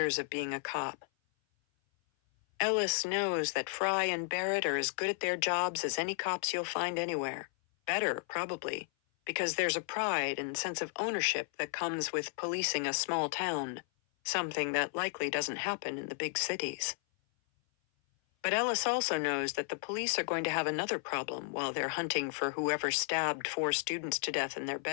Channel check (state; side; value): silent; right; 55 dB below the other